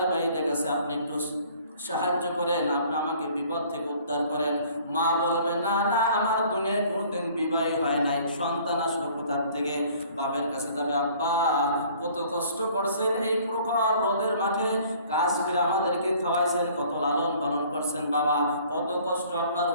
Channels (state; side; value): inverted; both; correlation -0.54